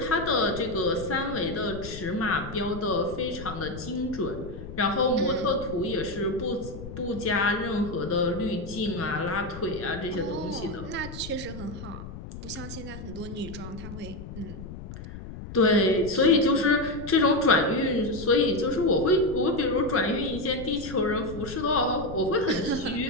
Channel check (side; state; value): left; noise; rumble, 11 dB below the sound